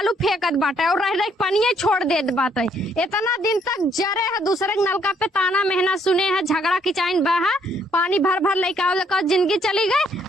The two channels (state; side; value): normal; both; correlation 0.68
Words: फेंकत बाटे और रह पानी छोड़ देत बाटे। इतना दिन तक जरे है दूसरे नलका पे ताना मेहना सुने है झगड़ा किचाइन बहा पानी भर भर लेके आओ लेकर जिंदगी चली गई।